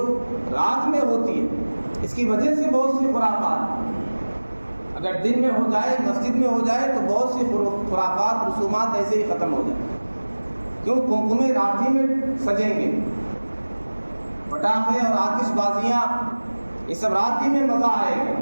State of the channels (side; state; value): both; inverted; correlation -1.00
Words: رات میں ہوتی ہے اس کی وجہ سے بہت سی خرافات، اگر دن میں ہو جائے، مسجد میں ہو جائے تو بہت سی خرافات، رسومات ایسے ہی ختم ہو جائیں۔ کیوں؟ قمقمے رات ہی میں سجیں گے، پٹاخے اور آتش بازیاں یہ سب رات ہی میں مزہ آئے گا۔